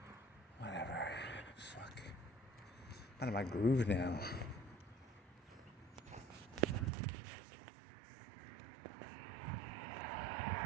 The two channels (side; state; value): left; drops out; at 6.9 s